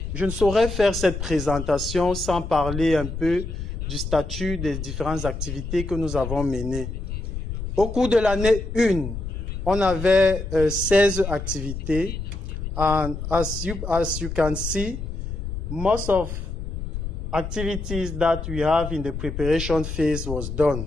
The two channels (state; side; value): noise; left; rumble, 6 dB below the sound